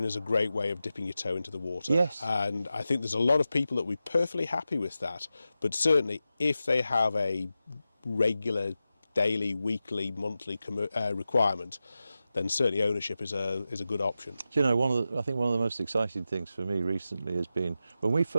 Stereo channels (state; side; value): inverted; both; correlation -0.92